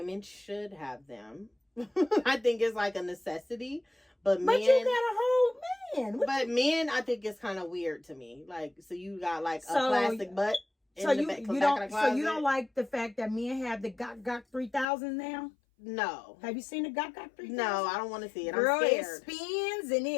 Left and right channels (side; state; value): right; drops out; at 14.9 s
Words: should have them. I think it's like a necessity, But you got a whole man. But men, I think it's kind of weird to me. Like, so you got like a plastic butt. So you don't like the fact that men have the Gok 3000 now? No. Have you seen the Gok 3000? No, I don't want to see it. Girl, I'm scared. It spins and